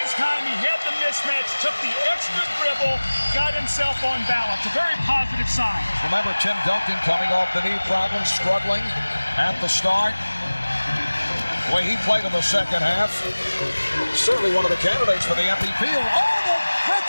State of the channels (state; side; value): inverted; both; correlation -1.00